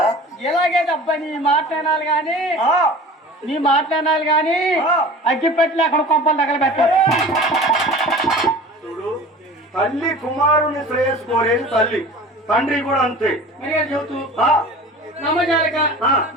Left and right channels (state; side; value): normal; both; correlation 0.40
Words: ఇలాగే అబ్బా నీ మాట్లాడాలి గాని అగ్గిపెట్టి అక్కడ కొంపలు తగలబెట్టారు. చూడు తల్లి కుమారుని శ్రేయస్సు కోరేది తల్లి, తండ్రి కూడా అంతే. చెబుతూ నమ్మజాలక